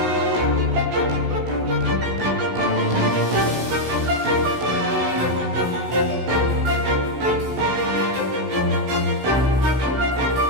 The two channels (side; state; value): left; late; 16 ms